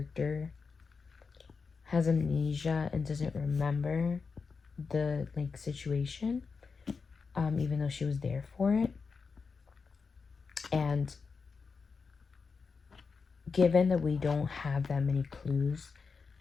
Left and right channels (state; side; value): quieter; right; 5.0 dB